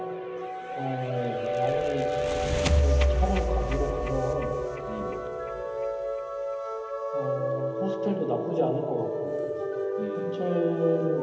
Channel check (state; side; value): identical; both; correlation 1.00